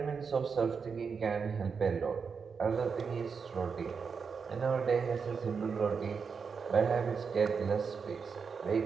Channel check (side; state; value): left; quieter; 5.7 dB